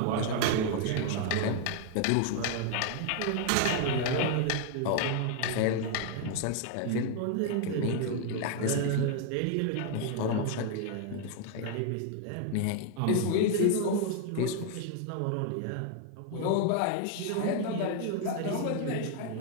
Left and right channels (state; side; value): different; both; correlation 0.00